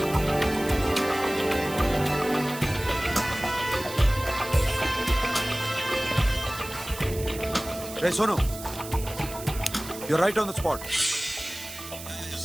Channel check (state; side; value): noise; right; hiss, 12 dB below the sound